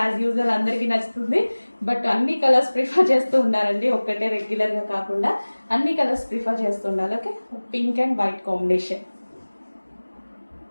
usual అందరికీ నచ్చుతుంది, బట్ అన్ని కలర్స్ ప్రిఫర్ చేస్తూ ఉండాలండి, ఒక్కటే రెగ్యులర్గా కాకుండా అన్ని కలర్స్ ప్రిఫర్ చేస్తూ ఉండాలి. Okay, pink and white combination.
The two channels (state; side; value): inverted; both; correlation -1.00